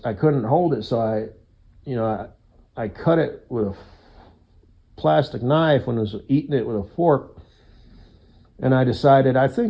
I couldn't hold it, so I cut it with a plastic knife when I was eating it with a fork, and I decided, I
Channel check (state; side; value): identical; both; correlation 1.00